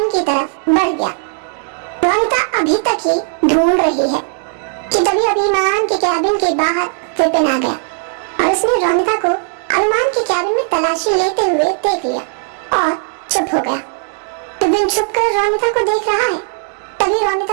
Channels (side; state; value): left; silent; digital silence